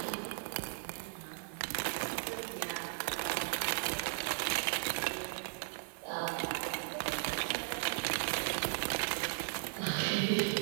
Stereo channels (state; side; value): silent; left; 53 dB below the other